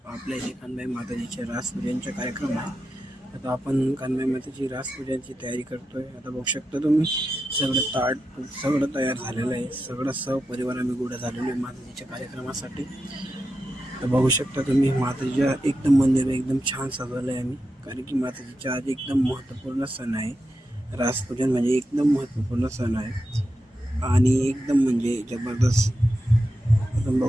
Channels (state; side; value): normal; both; correlation 0.88